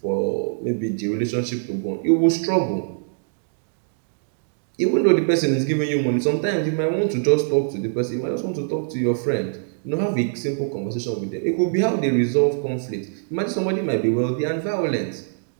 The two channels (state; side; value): silent; left; digital silence